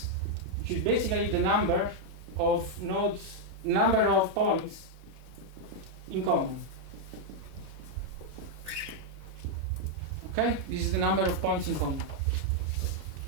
which is basically the number of nodes, number of points in common. Okay, this is the number of points in common.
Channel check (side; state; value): left; late; 24 ms